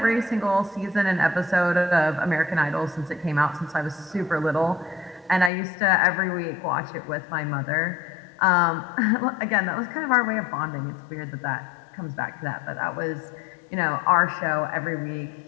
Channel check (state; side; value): drops out; right; at 5.5 s